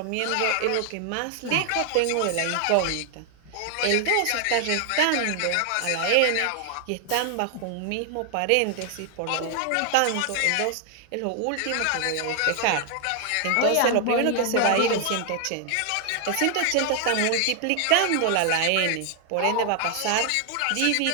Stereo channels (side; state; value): both; different; correlation 0.00